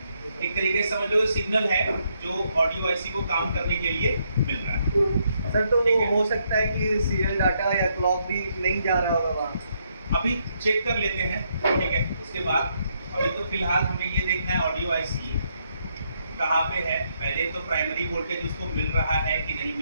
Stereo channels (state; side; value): inverted; both; correlation -0.75